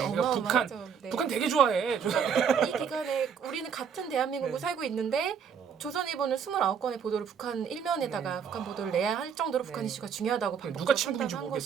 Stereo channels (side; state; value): left; quieter; 7.1 dB